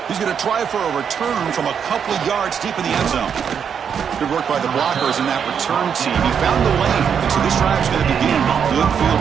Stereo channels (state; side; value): quieter; left; 7.4 dB